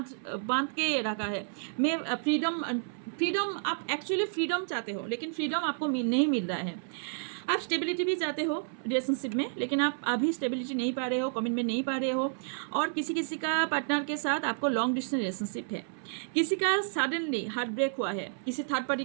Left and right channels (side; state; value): left; silent; 57 dB below the other